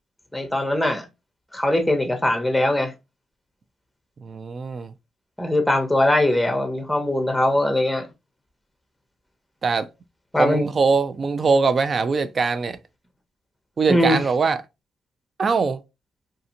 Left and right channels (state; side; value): normal; both; correlation 0.89